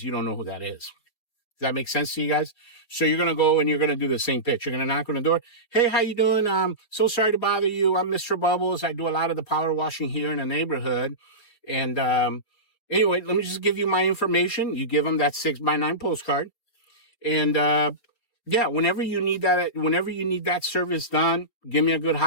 you don't know who that is. Does that make sense to you guys? So you're going to go and you're going to do the same pitch. You're going to knock on the door. Hey, how you doing? So sorry to bother you. I'm Mr. Bubbles. I do a lot of the power washing here in the neighborhood. And, anyway, let me just give you my information. You give them that 6x9 postcard. And, yeah, whenever you need that service done, give me a good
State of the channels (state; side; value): late; right; 4.5 ms